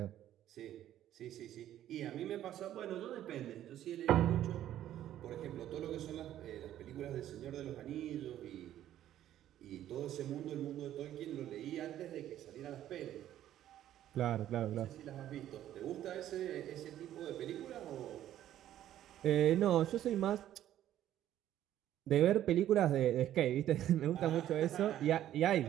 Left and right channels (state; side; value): quieter; left; 12.1 dB